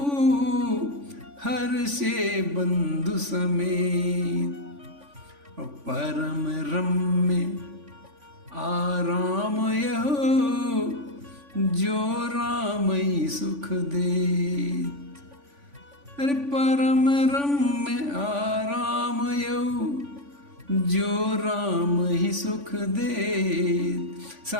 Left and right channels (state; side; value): late; left; 3.5 ms